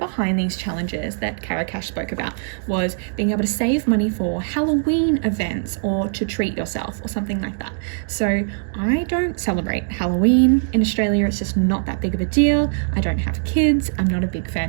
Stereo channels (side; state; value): left; silent; digital silence